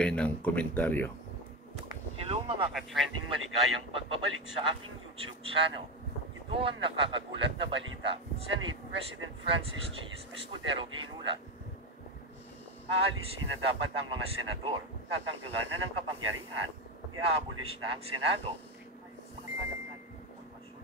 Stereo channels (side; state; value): both; normal; correlation 0.15